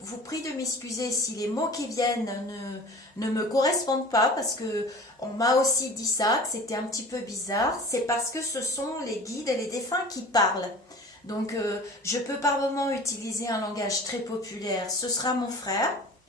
vous prie de m'excuser si les mots qui viennent ne me correspondent pas, parce que on m'a aussi dit ça, que c'était un petit peu bizarre. C'est parce que ce sont les guides et les défunts qui parlent. Donc je peux par moment utiliser un langage très populaire. Ce sera mon frère,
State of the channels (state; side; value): normal; both; correlation 0.41